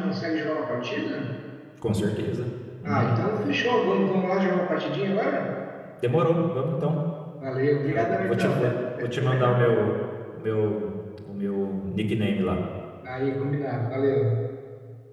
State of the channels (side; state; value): both; identical; correlation 1.00